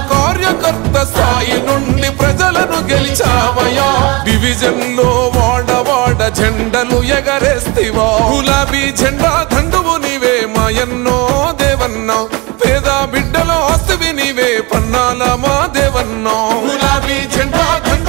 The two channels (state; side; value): quieter; left; 26.1 dB